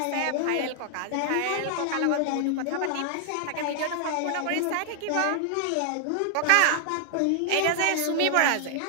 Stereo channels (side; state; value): both; different; correlation 0.00